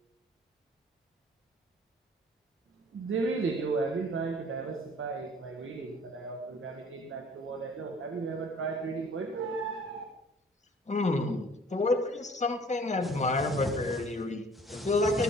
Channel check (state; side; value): normal; both; correlation 0.52